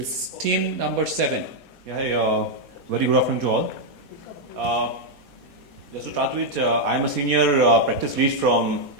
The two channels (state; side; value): late; left; 4.2 ms